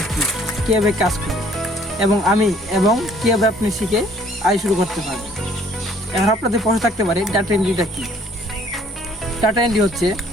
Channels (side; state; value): both; normal; correlation 0.60